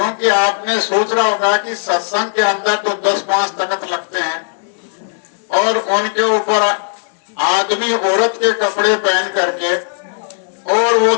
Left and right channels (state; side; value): silent; right; digital silence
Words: आपने सोच रहा होगा कि सत्संग के अंदर तो 10-5 तख्त लगते हैं और उनके ऊपर आदमी औरत के कपड़े पहन करके और वो